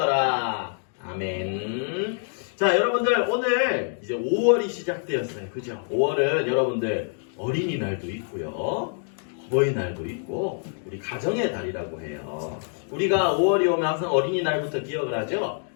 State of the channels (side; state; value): right; silent; 61 dB below the other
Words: 아멘. 자, 여러분들 오늘 이제 5월이 시작되었어요. 그죠? 5월은 여러분들 어린이날도 있고요. 어버이날도 있고 우리 가정의 달이라고 해요. 우리가 5월이 오면 항상 어린이날부터 기억을 하죠.